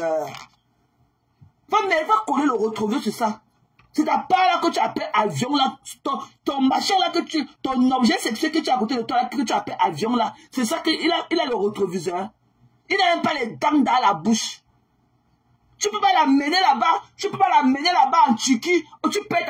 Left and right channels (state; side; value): identical; both; correlation 1.00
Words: Va coller le rétroviseur sur ça. C'est ta part là que tu appelles avion là, ton machin là ton objet sexuel que tu as à côté de toi là, que tu appelles avion là, c'est ça qu'il a le rétroviseur. Il n'a même pas les dents dans la bouche. Tu peux pas l'amener là-bas, en Turquie, où tu payes